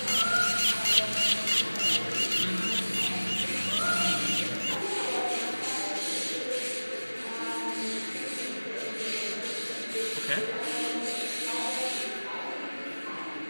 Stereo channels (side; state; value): both; inverted; correlation -1.00